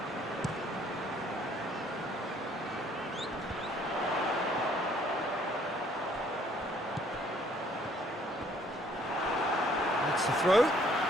That's the throw.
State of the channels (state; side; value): normal; both; correlation 0.62